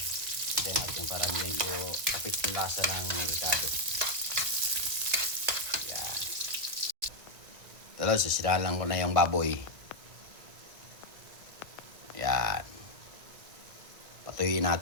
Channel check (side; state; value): left; late; 1.7 ms